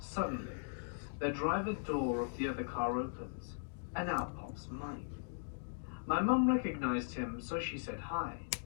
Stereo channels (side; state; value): right; silent; digital silence